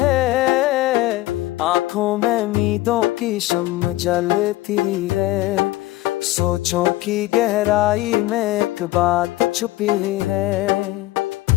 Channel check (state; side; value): quieter; right; 17.4 dB